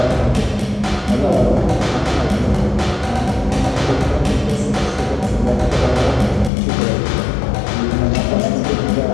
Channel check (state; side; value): drops out; right; at 6.5 s